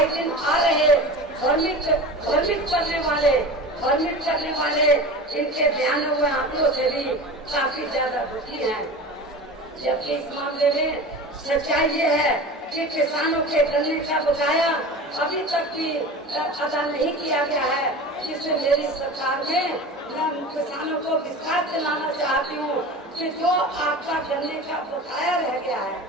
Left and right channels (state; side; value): normal; both; correlation 0.33